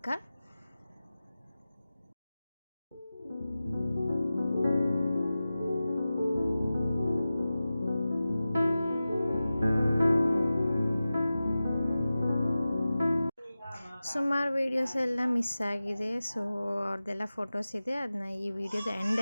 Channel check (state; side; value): inverted; both; correlation -0.95